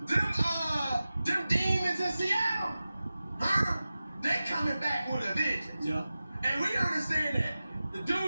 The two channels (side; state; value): both; inverted; correlation -0.95